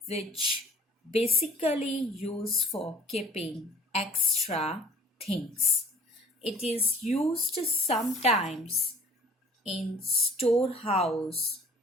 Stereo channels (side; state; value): both; normal; correlation 0.50